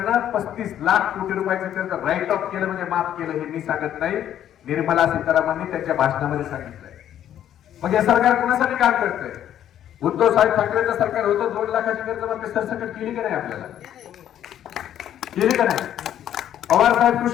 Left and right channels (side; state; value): right; quieter; 10.8 dB